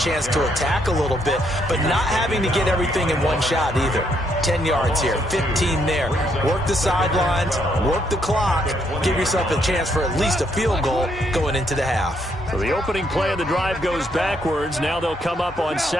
to attack a little bit, but not having to get everything in one shot either. 10 yards here, 15 there. Work the sidelines, work the clock, give yourself a chance for at least a field goal going into the half. So the opening play of the drive goes backwards. Now they'll come up on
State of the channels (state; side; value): normal; both; correlation 0.73